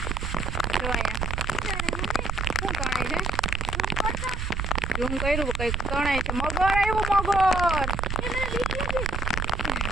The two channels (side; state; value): right; noise; rumble, 1 dB below the sound